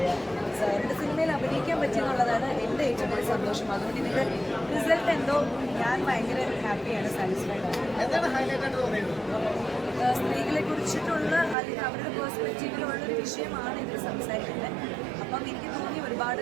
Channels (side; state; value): left; drops out; at 11.6 s